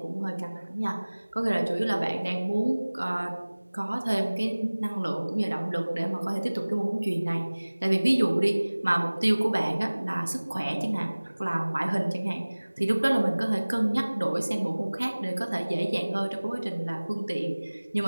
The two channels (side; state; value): both; inverted; correlation -1.00